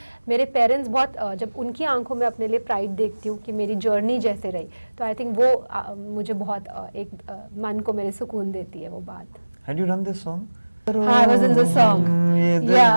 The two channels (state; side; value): inverted; both; correlation -1.00